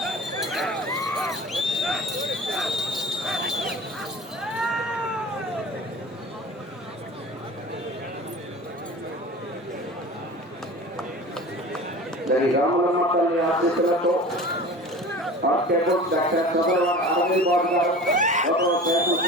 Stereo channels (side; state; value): both; normal; correlation 0.38